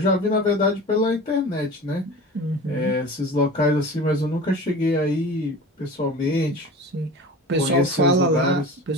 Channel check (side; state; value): both; normal; correlation 0.36